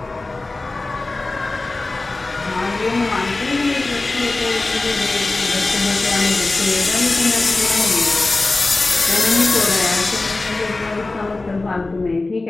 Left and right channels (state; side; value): quieter; right; 3.2 dB